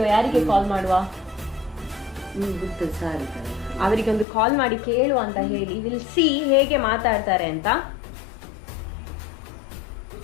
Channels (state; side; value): drops out; right; at 4.2 s